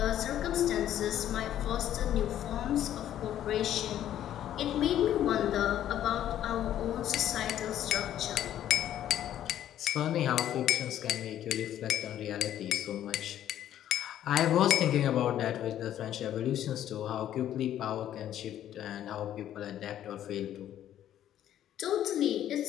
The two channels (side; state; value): right; quieter; 11.4 dB